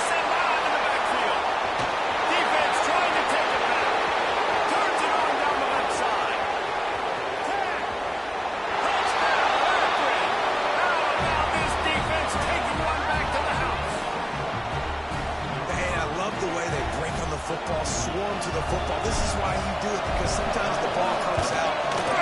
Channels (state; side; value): identical; both; correlation 1.00